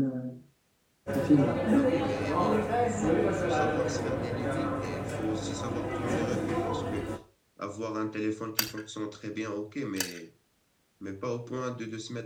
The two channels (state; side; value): identical; both; correlation 1.00